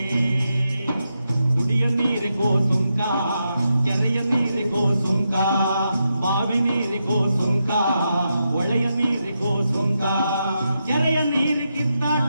ಕುಡಿಯ ನೀರಿಗೋ ಸುಂಕ ಕೆರೆಯ ನೀರಿಗೋ ಸುಂಕ ಬಾವಿ ನೀರಿಗೋ ಸುಂಕ ಒಳೆಯ ನೀರಿಗೋ ಸುಂಕ ಕೆರೆಯ ನೀರಿ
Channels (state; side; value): inverted; both; correlation -0.85